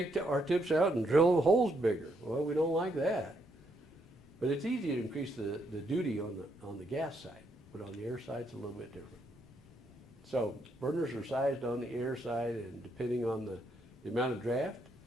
our tips out and drill the holes bigger. Well, we don't like that. But it's easy to increase the duty on the gas side, but on the air side it's a little bit different. So burners are sized on the air side, and depending on the amount of draft,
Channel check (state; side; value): normal; both; correlation 0.75